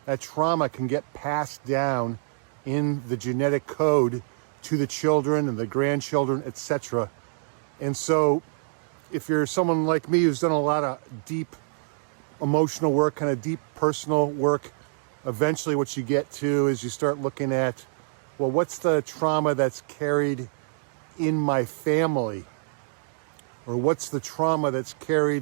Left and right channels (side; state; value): left; silent; digital silence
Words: that trauma can get passed down in the genetic code to the children and the grandchildren, etc. And so if you're someone like me who's done a lot of deep emotional work, kind of deep personal work, eventually what you get to is you start looking at, well, what's the trauma that's carried in my family? Or what's the trauma that's